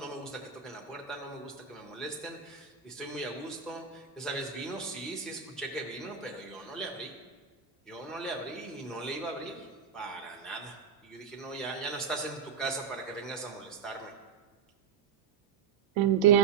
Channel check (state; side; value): quieter; left; 6.8 dB